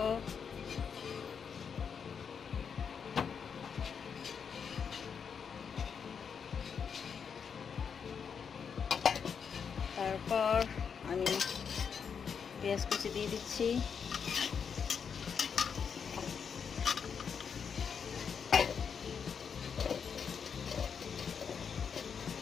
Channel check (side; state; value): right; quieter; 6.7 dB